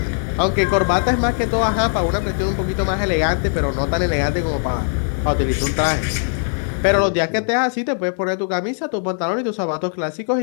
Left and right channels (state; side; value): silent; right; digital silence